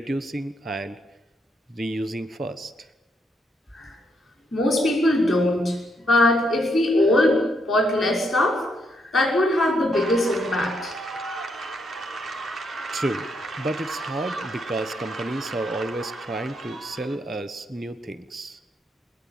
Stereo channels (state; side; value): normal; both; correlation 0.76